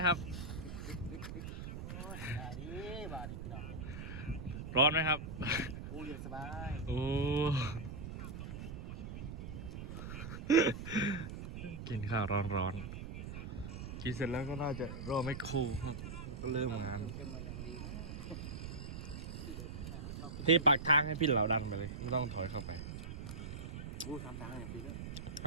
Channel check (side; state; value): right; noise; rumble, 7 dB below the sound